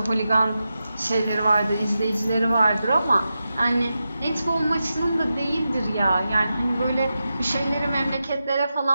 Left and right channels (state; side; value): inverted; both; correlation -0.90